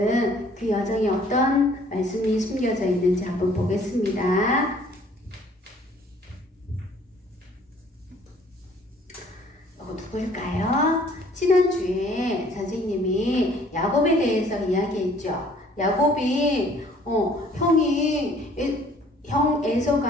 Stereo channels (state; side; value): normal; both; correlation 0.57